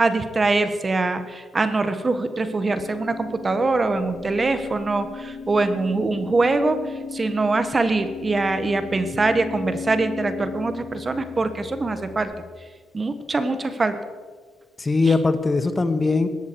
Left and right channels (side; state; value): both; normal; correlation 0.90